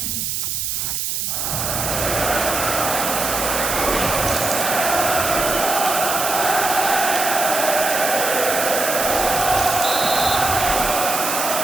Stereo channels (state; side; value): noise; right; hiss, 1 dB below the sound